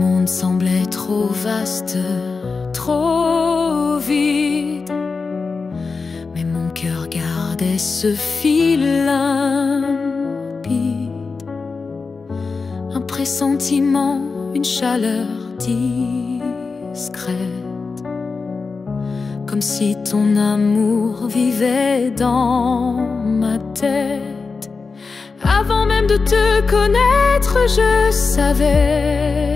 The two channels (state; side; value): quieter; right; 4.5 dB